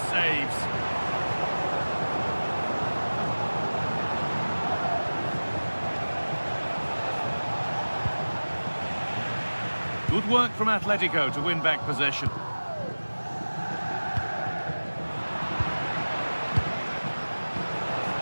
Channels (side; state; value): both; inverted; correlation -1.00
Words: saves. Good work from Atletico to win back possession.